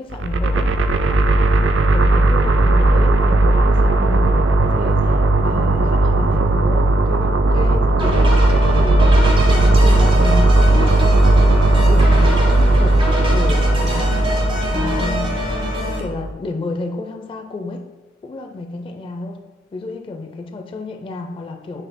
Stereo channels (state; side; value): normal; both; correlation 0.83